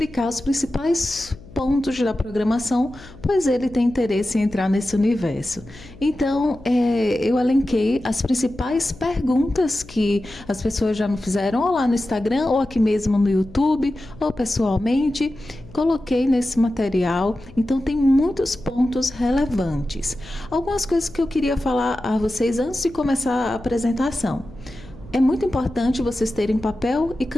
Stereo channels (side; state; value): left; noise; hum, 20 dB below the sound